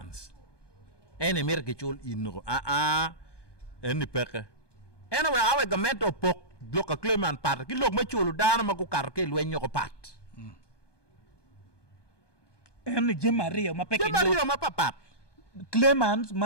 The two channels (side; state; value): right; late; 1.2 ms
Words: ene mer ke chol inro eni peke ene we awe gamento pok bloka claimant part ki lok ma cholo dana ma ko kar ke lwenyo ko pat ene jemario ma peke ma papat claimants